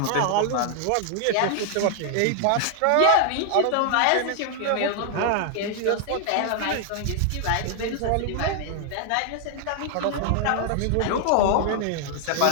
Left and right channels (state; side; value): different; both; correlation 0.00